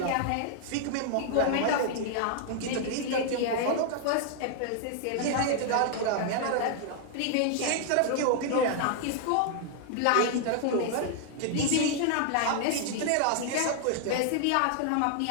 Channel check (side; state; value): both; different; correlation 0.00